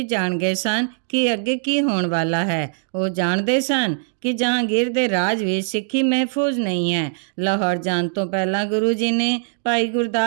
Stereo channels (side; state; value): left; silent; digital silence